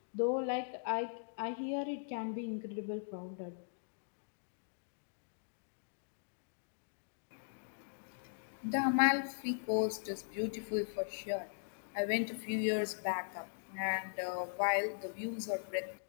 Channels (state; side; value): silent; right; digital silence